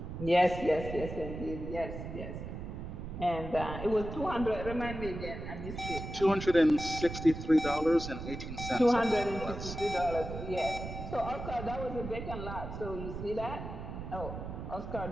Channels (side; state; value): right; noise; rumble, 8 dB below the sound